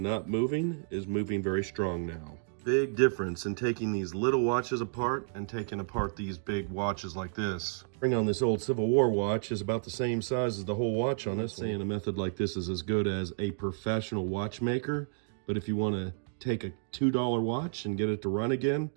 moving is moving very strong now. Big difference in taking these little watches apart and taking apart these big watches like this. Bring on this old Civil War watch is about the same size as the whole watch on this. Saying a method like this is as good as a professional watchmaker, but if you want to take a $2 watch and get it to run again,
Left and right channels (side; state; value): left; silent; digital silence